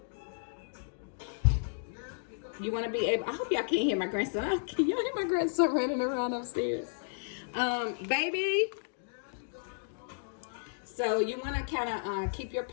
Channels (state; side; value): silent; right; digital silence